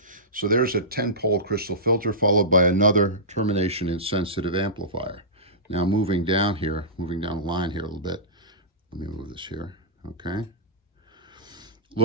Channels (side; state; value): both; normal; correlation -0.18